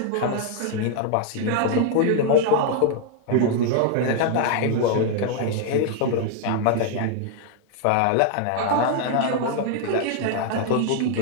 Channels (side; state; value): both; different; correlation 0.00